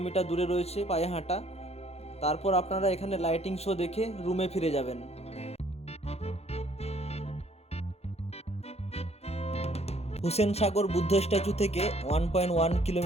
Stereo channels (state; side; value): late; right; 0.30 ms